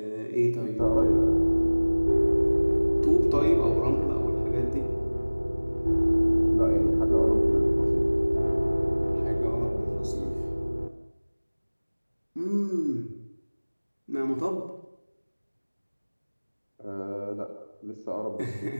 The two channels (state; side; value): inverted; both; correlation -1.00